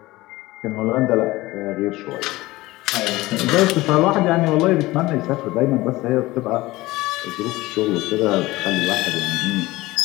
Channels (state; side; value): quieter; right; 19.2 dB